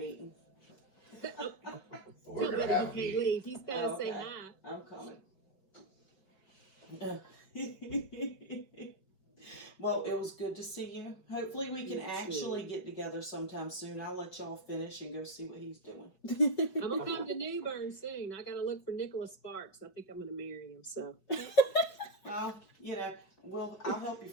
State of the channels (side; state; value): right; late; 5.3 ms